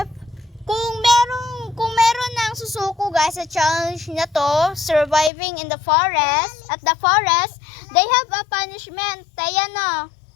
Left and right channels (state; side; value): drops out; right; at 5.3 s